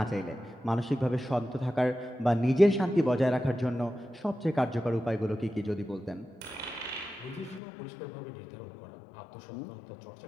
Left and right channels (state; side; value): drops out; right; at 7.6 s